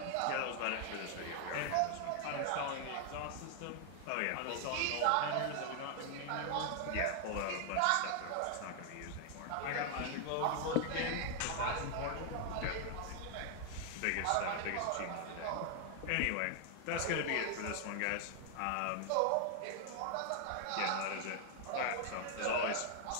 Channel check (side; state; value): both; different; correlation 0.00